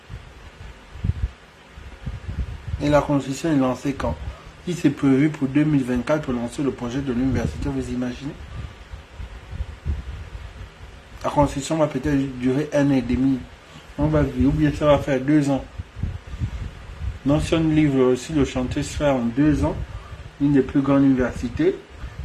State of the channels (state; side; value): identical; both; correlation 1.00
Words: Et la Constitution est lancée quand? Il s'est prévu pour 2024 pour lancer le projet de l'université, vous imaginez? La Constitution va peut-être durer 1 an et demi. On va vivre, ou bien ça va faire 2 ans. Donc si on livre aussi le chantier se fait en 2 ans, une des plus grandes universités.